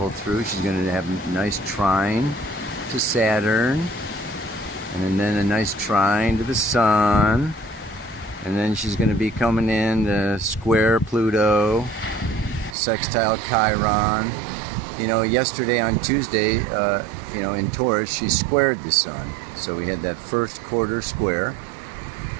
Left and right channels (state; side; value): drops out; left; at 12.8 s